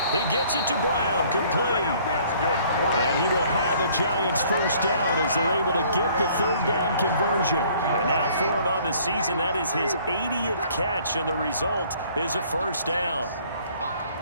He gets it to Brown, complete. That's good. And he will have a Giants first down as they're able to get the 3rd down conversion. And now for him on the season, that is his 80th catch, and the result is a first down.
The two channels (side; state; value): both; inverted; correlation -0.58